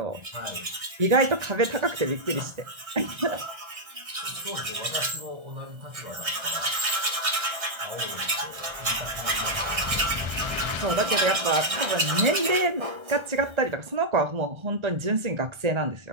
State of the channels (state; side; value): late; left; 1.3 ms